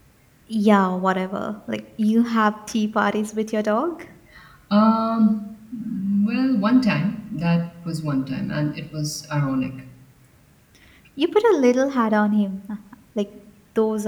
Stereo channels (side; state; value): both; identical; correlation 1.00